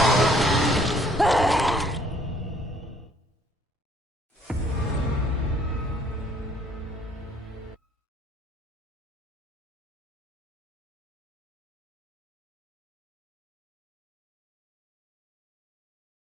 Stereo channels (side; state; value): both; normal; correlation 0.61